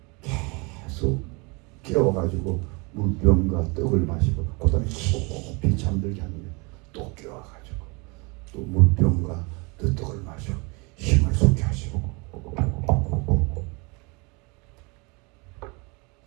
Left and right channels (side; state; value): left; quieter; 29.4 dB